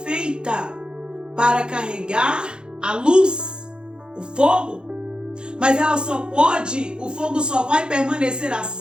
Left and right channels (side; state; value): left; late; 0.049 ms